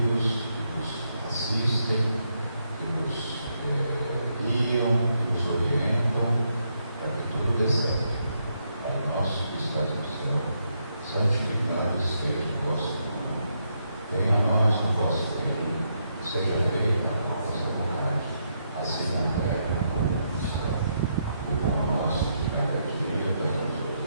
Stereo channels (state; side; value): inverted; both; correlation -0.79